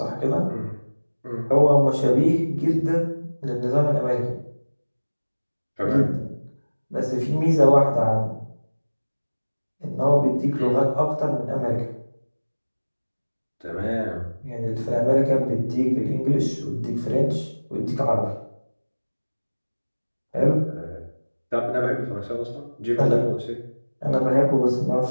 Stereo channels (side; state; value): both; inverted; correlation -1.00